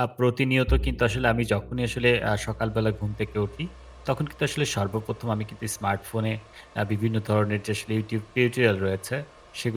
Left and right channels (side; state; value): both; identical; correlation 1.00